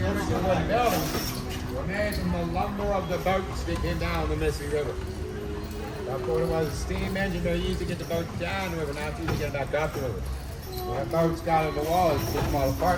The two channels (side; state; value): both; identical; correlation 1.00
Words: original wooden buildings, were made from the lumber of the boats that came down the Mississippi River. Before there was a steam engine, they used to get the boats down the river, now it's easy to get back up the river. When the boats got on the wall, they took them all